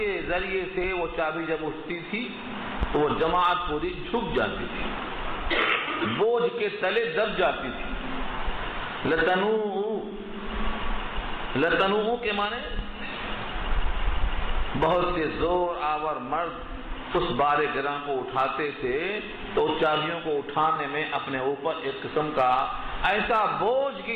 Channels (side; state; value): both; identical; correlation 1.00